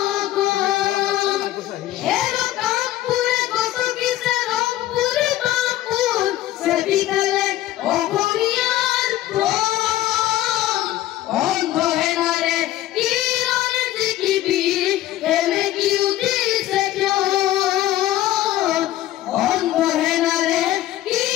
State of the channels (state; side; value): quieter; right; 14.4 dB